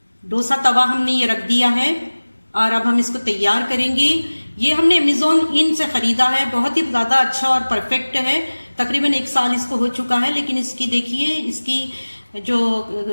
डोसा तवा हमने ये रख दिया है और अब हम इसको तैयार करेंगे। ये हमने अमेज़ॉन इन से ख़रीदा है, बहुत ही ज़्यादा अच्छा और परफेक्ट है। तकरीबन 1 साल इसको हो चुका है, लेकिन इसकी देखिए इसकी जो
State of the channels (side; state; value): both; inverted; correlation -1.00